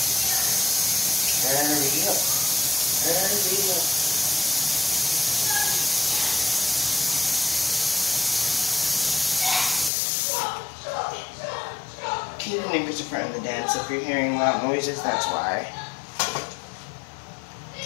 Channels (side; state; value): right; drops out; at 9.9 s